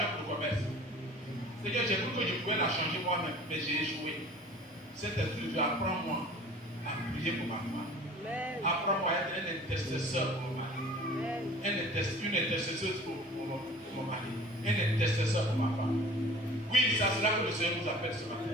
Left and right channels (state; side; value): normal; both; correlation 0.45